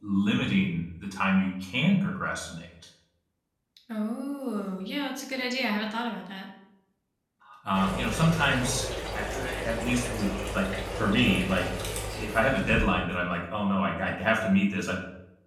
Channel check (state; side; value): identical; both; correlation 1.00